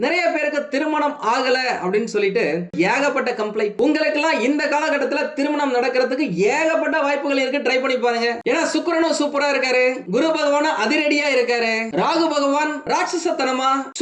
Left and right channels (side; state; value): both; identical; correlation 1.00